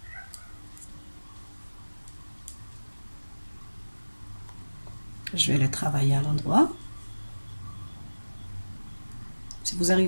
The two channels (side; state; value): both; inverted; correlation -1.00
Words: Je vais les travailler à l'endroit. Si vous